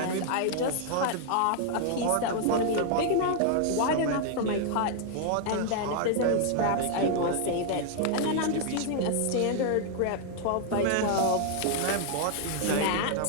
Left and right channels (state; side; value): different; both; correlation 0.00